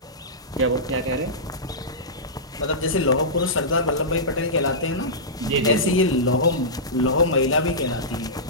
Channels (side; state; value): both; normal; correlation -0.16